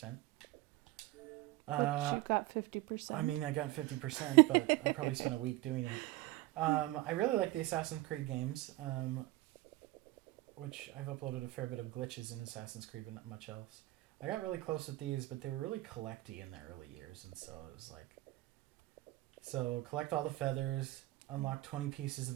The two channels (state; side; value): quieter; left; 18.7 dB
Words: But you got 50%. I mean, I got 50%, but I probably spent a week doing it. I really like the Assassin's Creed games, which I've uploaded a fair bit of glitches in Assassin's Creed, but not much else. I got really close with these, but they were really collecty in the early years, and so it was like... So, collect all the feathers, unlock 20 pieces